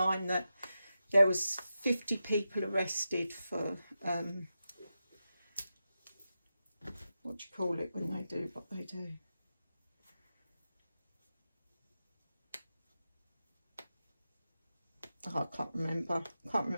that there was 50 people arrested for what do you call it when they do what they do? Oh, I can't remember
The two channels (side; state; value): both; inverted; correlation -0.90